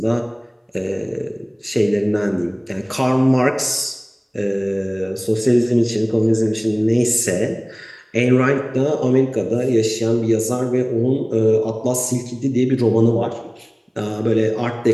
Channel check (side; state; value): both; identical; correlation 1.00